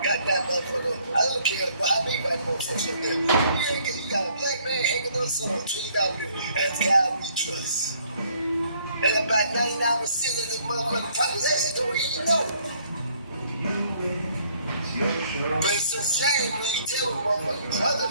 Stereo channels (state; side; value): inverted; both; correlation -0.63